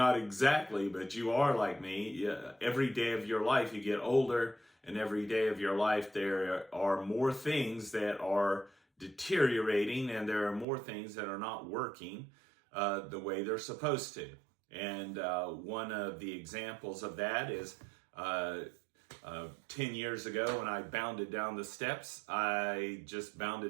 exactly, but you are like me, every day of your life you get older, and every day of your life there are more things that are deteriorating, and there are more things that are not working the way they're supposed to. And one of the examples of that is 10 years ago when I bounded down the steps. I just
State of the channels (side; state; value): left; drops out; at 10.7 s